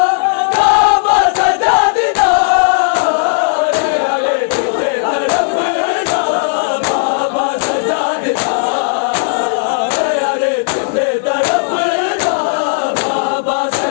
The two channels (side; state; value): right; silent; digital silence